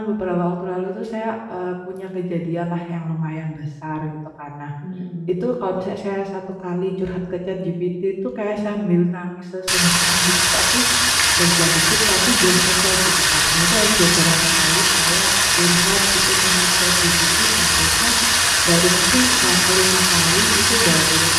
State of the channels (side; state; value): both; identical; correlation 1.00